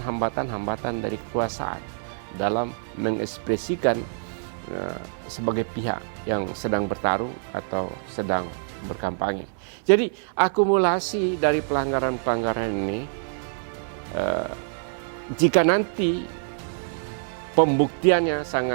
dari kekuasaan dalam mengekspresikan sebagai pihak yang sedang bertarung atau sedang berkampanye. Jadi akumulasi dari pelanggaran-pelanggaran ini, jika nanti pembuktiannya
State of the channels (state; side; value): silent; left; 61 dB below the other